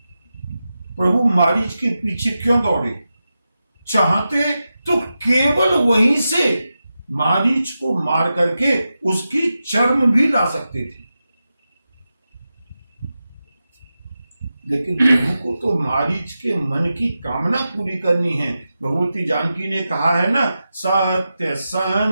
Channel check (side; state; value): both; inverted; correlation -0.91